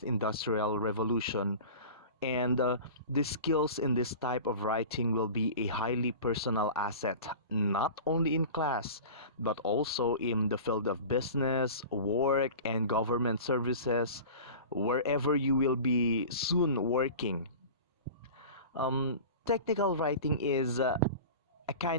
industrial revolution, and the skills in this type of writing will be a highly personal asset, not only in class, but also in the field of business, work, and government services, wherever you will be soon working. Technical writing is a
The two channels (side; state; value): both; inverted; correlation -0.36